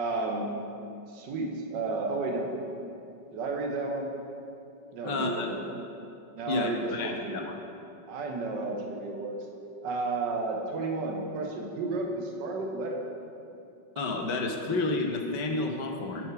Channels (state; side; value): late; left; 5.4 ms